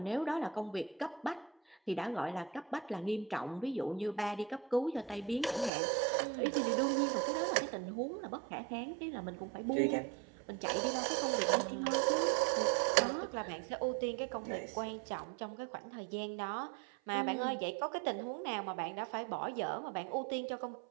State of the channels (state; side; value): drops out; left; at 5.7 s